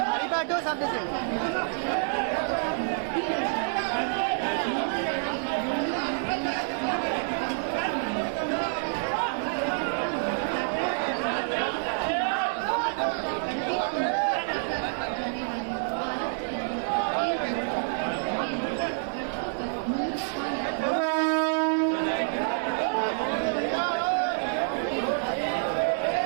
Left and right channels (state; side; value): silent; left; 59 dB below the other